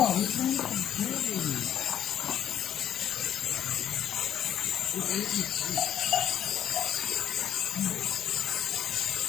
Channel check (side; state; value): right; quieter; 10.1 dB